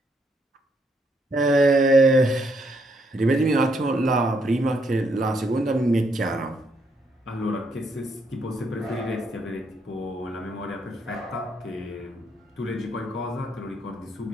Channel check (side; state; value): both; normal; correlation 0.74